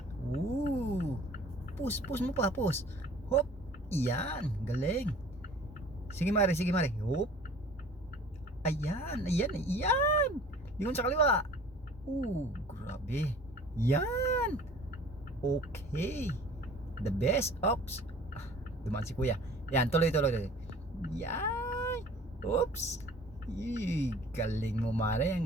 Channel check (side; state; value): both; normal; correlation 0.48